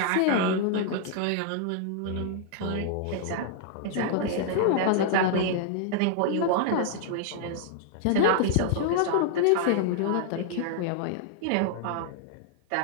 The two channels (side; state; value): both; different; correlation -0.01